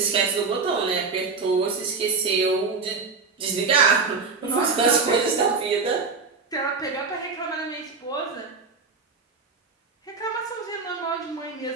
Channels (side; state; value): left; quieter; 4.5 dB